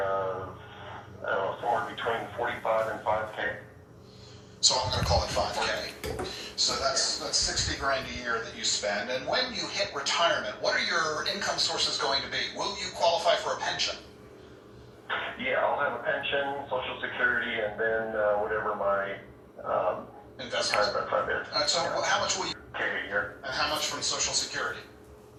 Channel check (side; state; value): both; identical; correlation 1.00